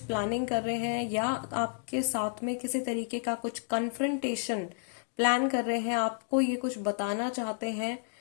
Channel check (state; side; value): silent; right; digital silence